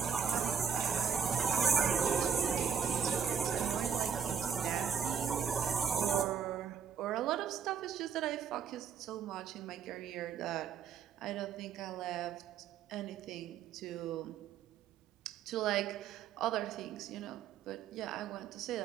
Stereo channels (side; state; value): left; quieter; 7.2 dB